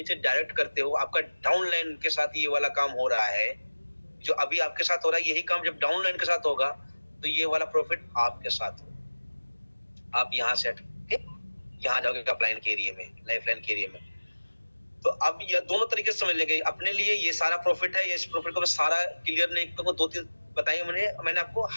डायरेक्ट करते हो, आपका डाउनलाइन के साथ ये वाला काम हो रहा है, जो अभी आपके साथ हो रहा है, यही काम जब डाउनलाइन के साथ होगा तो ये वाला प्रॉफिट आपके साथ हो। आप यहाँ से यहाँ जाओगे अपलाइन के एरिया में, लाइफलाइन के एरिया में, तो अब ये दोनों तरीके से समझ लेंगे। अपने लिए ये सारा प्रॉफिट है, इस प्रॉफिट को मैं सारा क्लियर नहीं करूंगा, 2-3 बताइए मैंने आपको।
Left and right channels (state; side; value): inverted; both; correlation -1.00